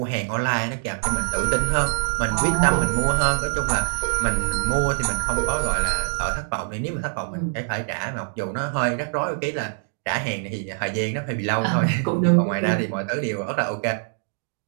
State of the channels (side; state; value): left; silent; 63 dB below the other